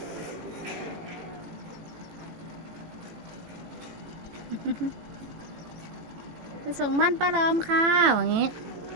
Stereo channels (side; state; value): left; late; 18 ms